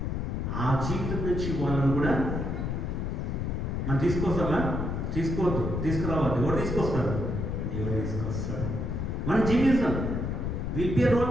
ఆ జీవితం నుంచి వాళ్ళను కూడా మనం తీసుకొస్తామా? తీసుకోవద్దు, తీసుకురావద్దు. ఎవరు తీసుకొస్తారు? దేవుడు తీసుకొస్తాడు. మనం జీవిస్తాం. Will be a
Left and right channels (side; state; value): left; noise; rumble, 2 dB below the sound